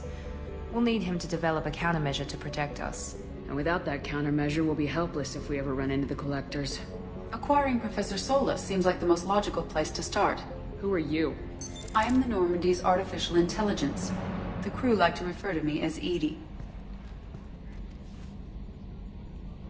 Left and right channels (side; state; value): both; identical; correlation 1.00